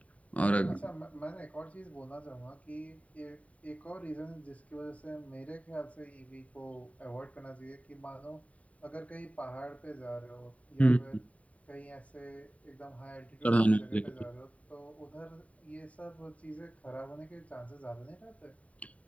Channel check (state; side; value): late; right; 0.067 ms